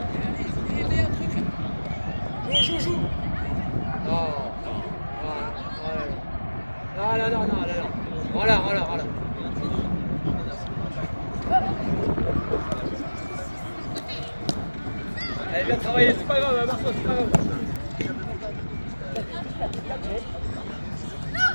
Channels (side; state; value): both; inverted; correlation -1.00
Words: Joue. Non. Voilà. Allez, bien travaillé, c'est pas grave, Marceau, c'est pas grave.